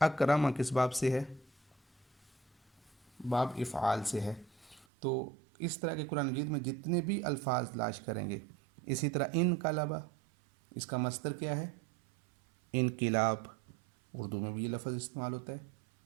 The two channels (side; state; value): left; drops out; at 4.9 s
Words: اکرم کس باب سے ہے؟ باب افعال سے ہے۔ تو اس طرح کے قرآن مجید میں جتنے بھی الفاظ تلاش کریں گے، اسی طرح انقلب، اس کا مصدر کیا ہے؟ انقلاب، اردو میں بھی یہ لفظ استعمال ہوتا ہے،